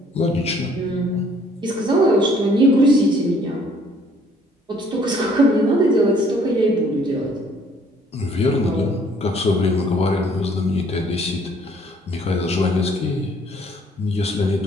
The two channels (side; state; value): both; normal; correlation 0.61